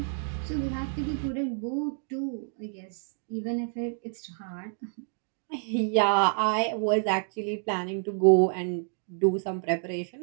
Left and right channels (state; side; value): silent; left; 59 dB below the other